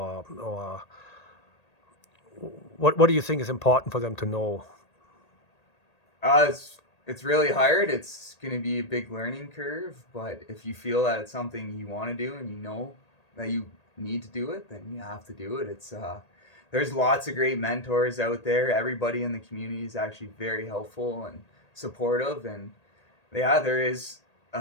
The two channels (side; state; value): right; late; 1.8 ms